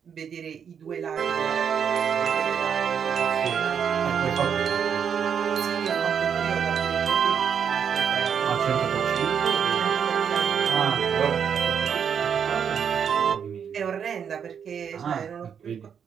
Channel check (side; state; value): left; quieter; 7.6 dB